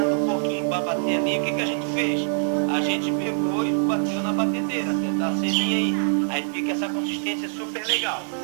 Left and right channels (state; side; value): silent; left; 62 dB below the other